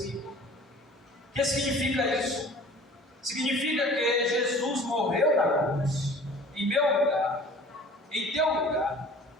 O que significa isso? Significa que Jesus morreu na cruz, em meu lugar, em teu lugar,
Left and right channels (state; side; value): normal; both; correlation 0.47